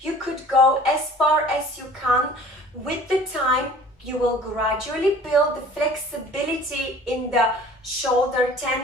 You could go as far as you can. With the time, you will gradually build the flexibility in the shoulder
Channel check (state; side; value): normal; both; correlation 0.48